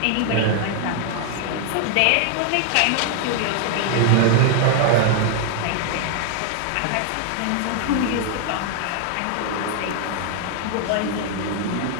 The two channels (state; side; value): different; both; correlation 0.00